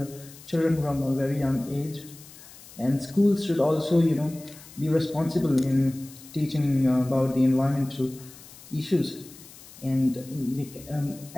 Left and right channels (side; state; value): left; noise; hiss, 19 dB below the sound